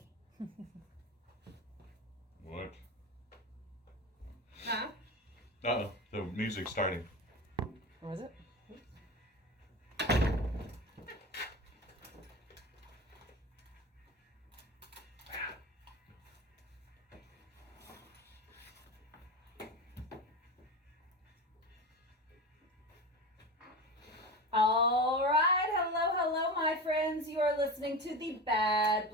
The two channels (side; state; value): both; normal; correlation 0.26